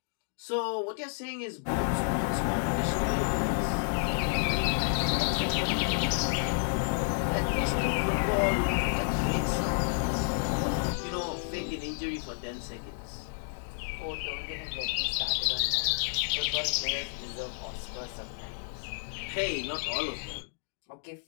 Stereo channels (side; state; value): right; silent; digital silence